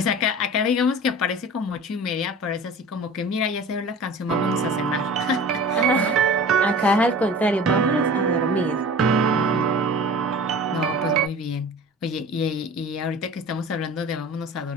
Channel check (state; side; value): normal; both; correlation 0.39